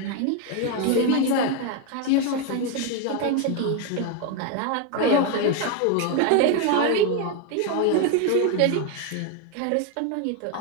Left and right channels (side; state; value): both; different; correlation 0.02